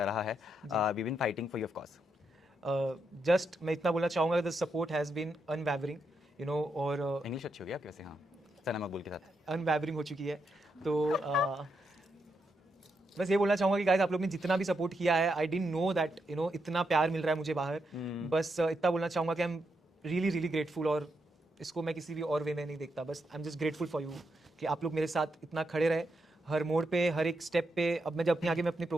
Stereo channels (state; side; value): normal; both; correlation 0.82